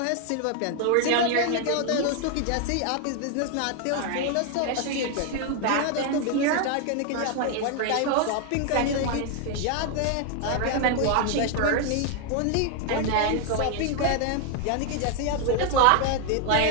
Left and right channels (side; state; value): both; different; correlation 0.00